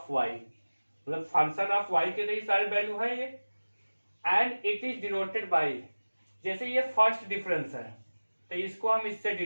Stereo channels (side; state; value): both; inverted; correlation -1.00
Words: वाई, मतलब फंक्शन ऑफ वाई के लिए सारे वैल्यू है ये। And it is denoted by, जैसे ये फर्स्ट डिफरेंस है तो इसको हम इससे